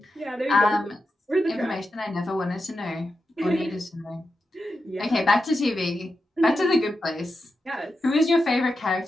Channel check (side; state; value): both; normal; correlation 0.89